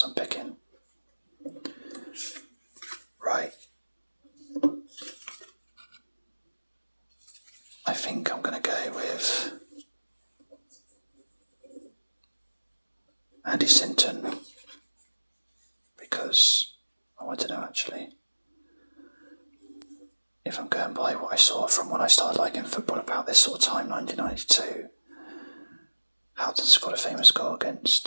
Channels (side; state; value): both; inverted; correlation -1.00